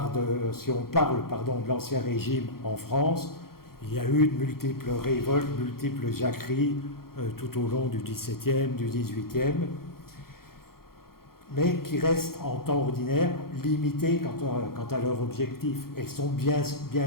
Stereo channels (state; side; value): late; right; 0.93 ms